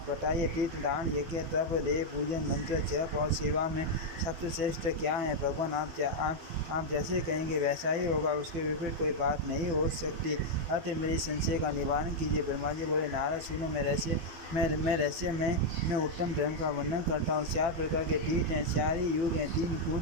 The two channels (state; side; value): late; left; 12 ms